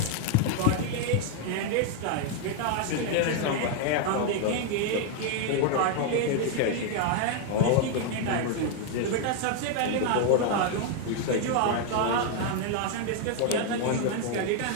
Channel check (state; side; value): different; both; correlation 0.00